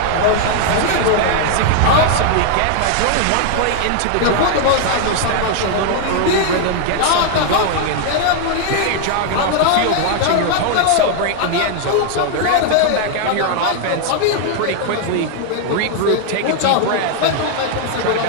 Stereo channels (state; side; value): different; both; correlation 0.00